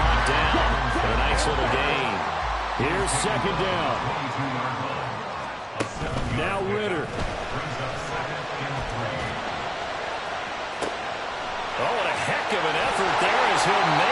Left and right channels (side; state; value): both; identical; correlation 1.00